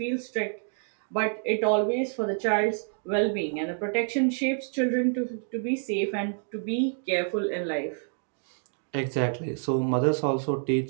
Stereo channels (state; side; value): silent; left; 59 dB below the other